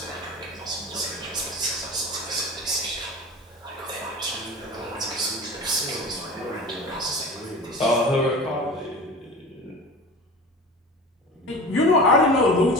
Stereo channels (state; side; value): normal; both; correlation 0.35